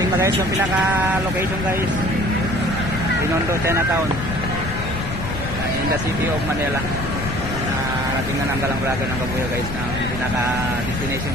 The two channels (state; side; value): noise; left; rumble, 6 dB below the sound